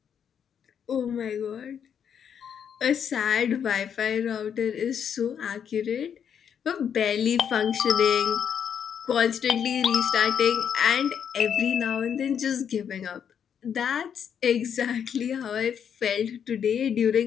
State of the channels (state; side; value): quieter; right; 8.1 dB